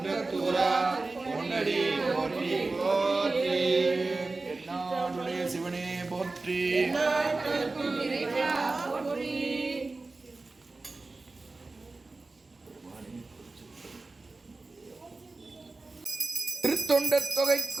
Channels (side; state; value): left; quieter; 3.5 dB